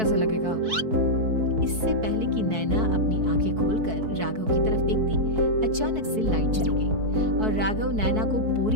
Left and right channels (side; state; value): left; late; 4.6 ms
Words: लगेगा? इससे पहले कि नैना अपनी आंखें खोलकर राघव की तरफ देखती, अचानक से लाइट चली गई और राघव नैना को